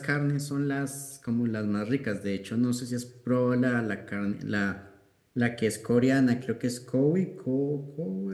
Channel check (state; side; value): identical; both; correlation 1.00